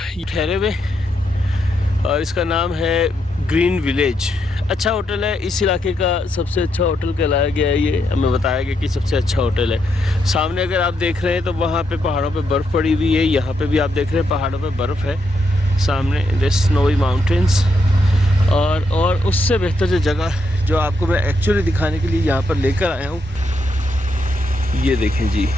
ये ठहरे हुए और इसका नाम है ग्रीन विलेज। अच्छा होटल है, इस इलाके का सबसे अच्छा होटल कहलाया गया है। ये हमें बताया गया कि सबसे अच्छा होटल है। सामने अगर आप देख रहे हैं तो वहाँ पे पहाड़ों पे बर्फ़ पड़ी हुई है। यहाँ पे भी आप देख रहे हैं पहाड़ों पे बर्फ़ है सामने, द स्नोवी माउंटेन्स। और उससे बेहतर जो जगह जो आपको मैं एक्चुअली दिखाने के लिए यहाँ पर लेकर आया हूँ, ये देखें जी।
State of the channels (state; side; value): normal; both; correlation 0.80